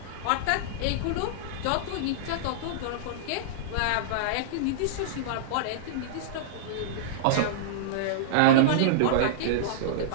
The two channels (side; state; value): both; different; correlation -0.02